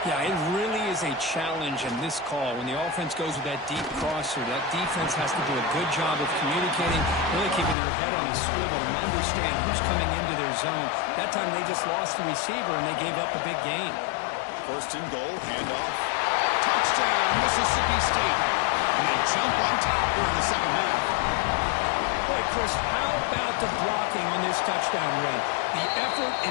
Yeah, it really is a challenge in this call. When the offense goes with that deep crosser, that defense has to do a good job of communicating, really keeping their head on a swivel and understand who's coming into their zone. That time they just lost the receiver and they gave up a big gain. 1st and goal, handoff. Touchdown, Mississippi State. And they jump on top during the 2nd half. Boy, Chris, how about the blocking on this touchdown run? The effort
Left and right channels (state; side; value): drops out; right; at 7.8 s